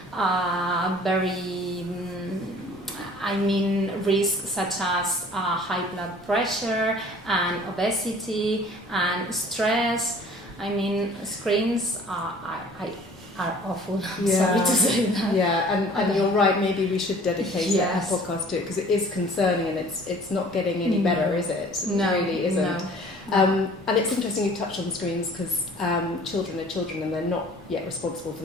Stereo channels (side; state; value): left; noise; rumble, 26 dB below the sound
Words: very risks such as high blood pressure and obesity and stress. I mean, screens are awful. I'm sorry to say that. Yeah, and you're right, maybe we should dedicate a podcast to it, because it is concerning, and it's not getting any better, is it? No, it really isn't. No. And it's interesting you touched on screens, because children are children and they're not yet responsible for